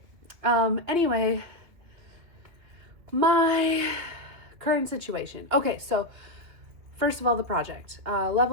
Anyway, my current situation. Okay, so first of all, the project.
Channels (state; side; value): late; left; 2.7 ms